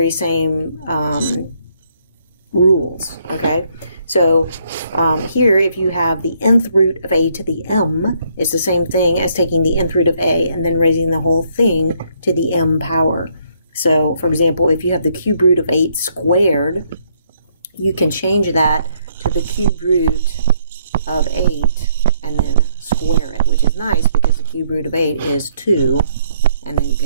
same rules, okay? So here, if you have the nth root of a to the m, it's the same thing as taking the nth root of a and then raising the whole thing to the m power. So, for example, if you have the cube root of 8 squared, you can change that to the cube root of 8 and then square it, which is nice because the cube root of 8 is 2, and then you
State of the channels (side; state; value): both; inverted; correlation -0.69